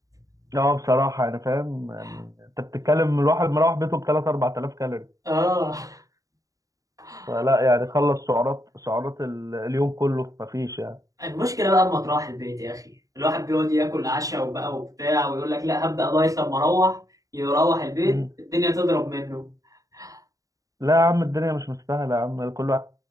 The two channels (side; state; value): left; late; 0.16 ms